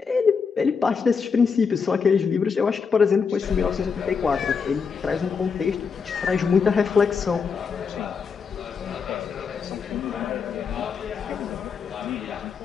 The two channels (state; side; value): quieter; right; 5.8 dB